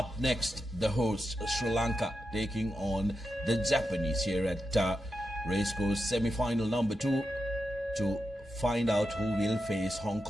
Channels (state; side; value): normal; both; correlation 0.88